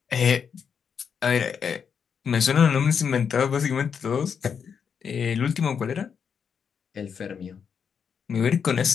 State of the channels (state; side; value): quieter; right; 6.9 dB